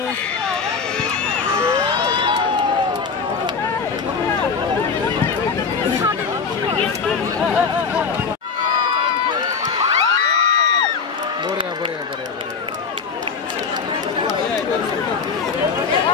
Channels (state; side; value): quieter; right; 5.4 dB